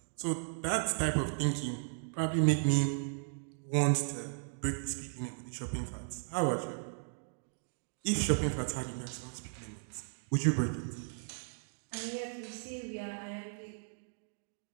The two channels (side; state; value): left; silent; digital silence